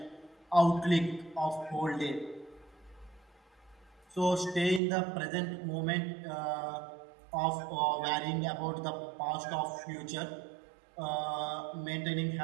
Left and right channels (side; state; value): left; drops out; at 4.8 s